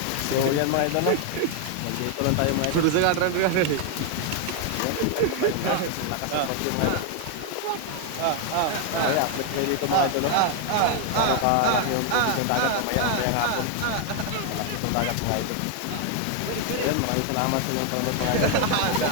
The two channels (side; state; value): both; different; correlation 0.00